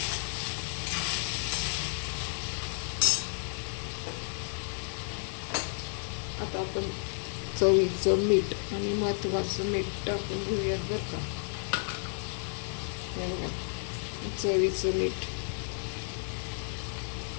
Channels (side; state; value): right; silent; 56 dB below the other